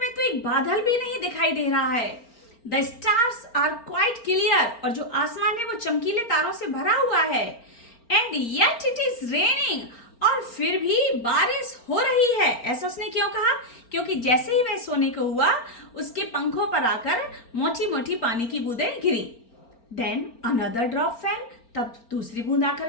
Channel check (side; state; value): right; late; 4.4 ms